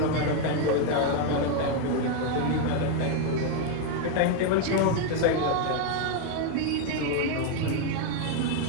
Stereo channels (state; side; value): different; both; correlation 0.01